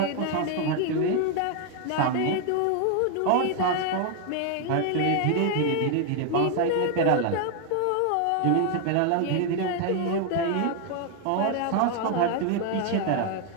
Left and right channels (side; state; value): both; different; correlation 0.00